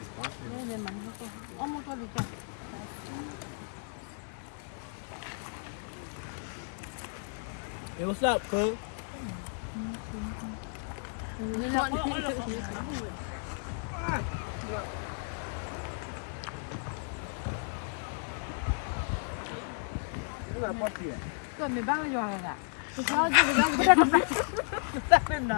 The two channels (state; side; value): silent; right; 56 dB below the other